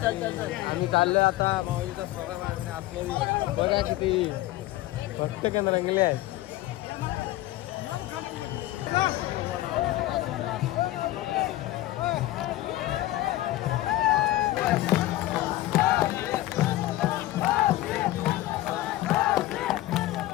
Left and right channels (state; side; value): quieter; right; 16.2 dB